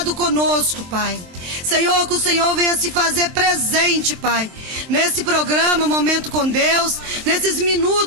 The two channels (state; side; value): late; left; 23 ms